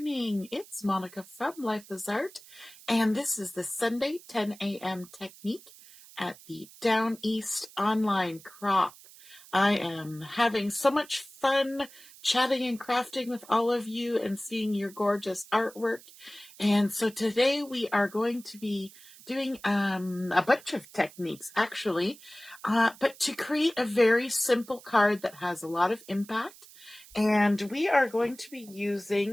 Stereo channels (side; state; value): right; noise; hiss, 21 dB below the sound